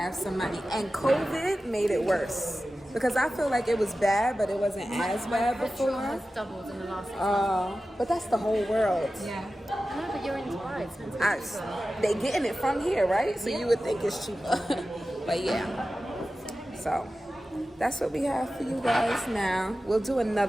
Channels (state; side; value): normal; both; correlation 0.94